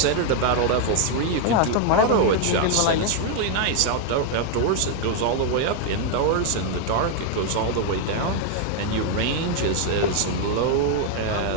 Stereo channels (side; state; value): both; different; correlation 0.00